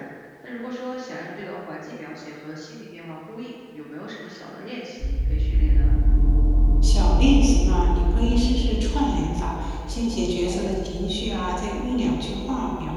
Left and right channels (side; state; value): both; identical; correlation 1.00